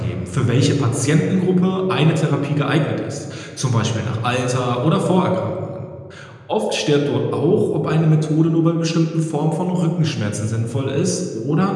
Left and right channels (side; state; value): both; identical; correlation 1.00